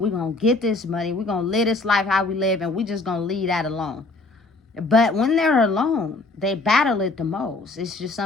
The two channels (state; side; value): quieter; right; 3.3 dB